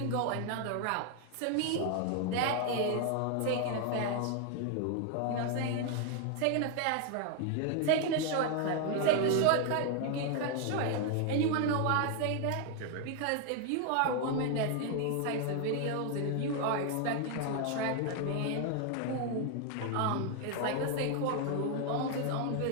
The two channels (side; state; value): both; different; correlation 0.00